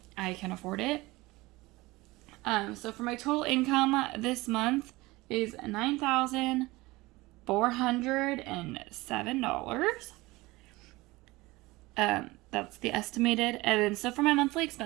I can afford it. So for my total income this month is $9,407. That's the estimated. And then so for my monthly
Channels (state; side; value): quieter; left; 20.9 dB